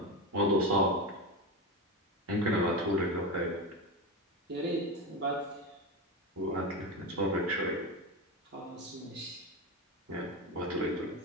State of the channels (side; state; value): both; normal; correlation 0.19